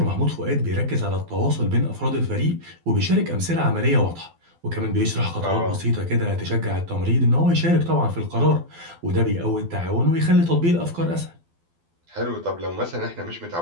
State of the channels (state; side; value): late; left; 12 ms